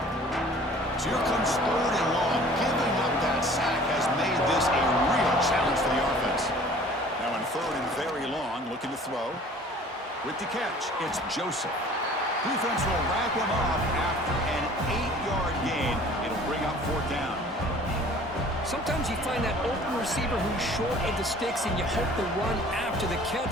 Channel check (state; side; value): normal; both; correlation 0.49